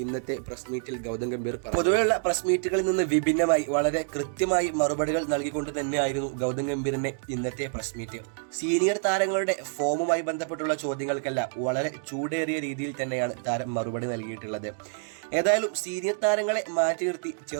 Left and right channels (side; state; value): left; silent; digital silence